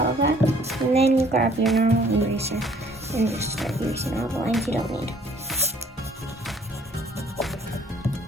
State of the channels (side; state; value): both; normal; correlation 0.58